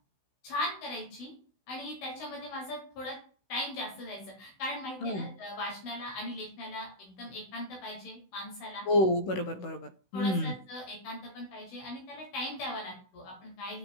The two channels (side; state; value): right; late; 16 ms